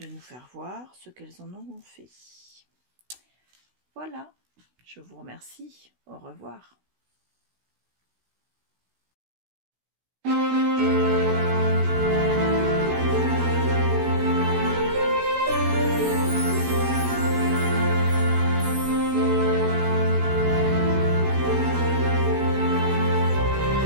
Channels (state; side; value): late; left; 16 ms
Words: nous faire voir ce qu'elles en auront fait. Voilà, je vous remercie, au revoir.